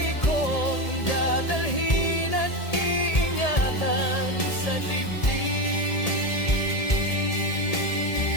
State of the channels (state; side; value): late; right; 1.8 ms